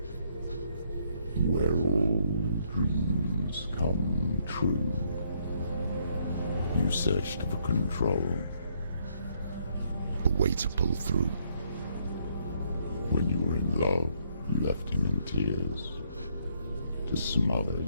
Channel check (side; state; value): both; inverted; correlation -0.71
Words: where all dreams come true, you searched for control, a way to pull through. When you were in love, you left him in tears, to smother